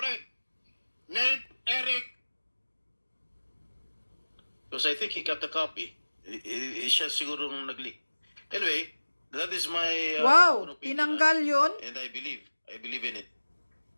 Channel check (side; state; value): both; inverted; correlation -1.00